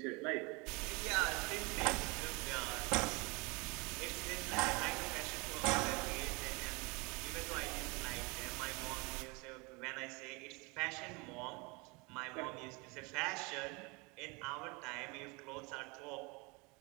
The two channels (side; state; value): left; quieter; 27.8 dB